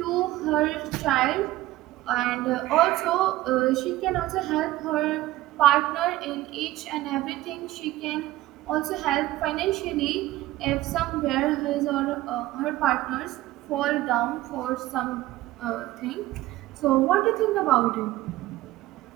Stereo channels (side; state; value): left; quieter; 16.3 dB